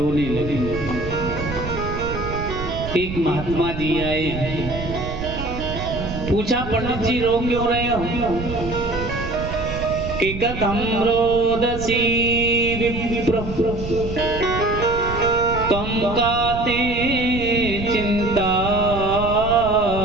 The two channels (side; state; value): right; noise; rumble, 8 dB below the sound